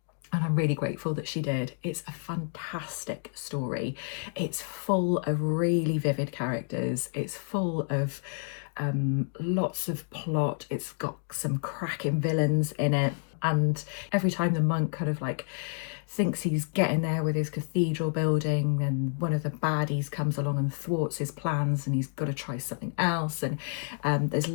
and I'm really grateful that she did. It's a fantastic story. It's full of really vivid characters. It's full of lots of plot. It's got some cracking villains in it. And every time the monk kind of like thinks he's getting there with his cathedral building, and one of the baddies comes along and thwarts his plans, and he's got to try something else. And there's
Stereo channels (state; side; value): silent; right; 58 dB below the other